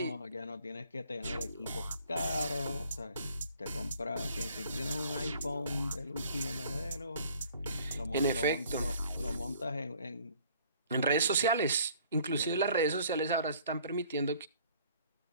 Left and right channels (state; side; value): inverted; both; correlation -0.57